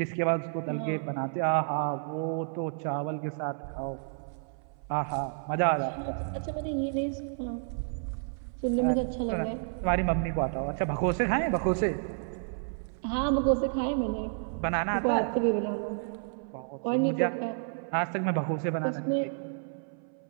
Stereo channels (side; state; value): left; silent; 57 dB below the other